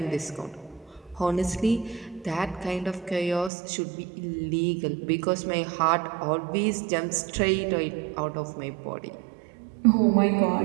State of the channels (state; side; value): drops out; left; at 3.5 s